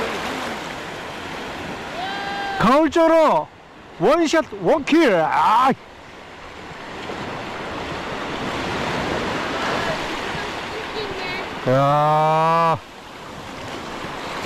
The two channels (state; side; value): identical; both; correlation 1.00